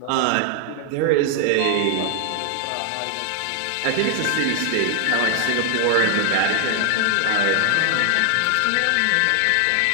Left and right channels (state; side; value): different; both; correlation 0.00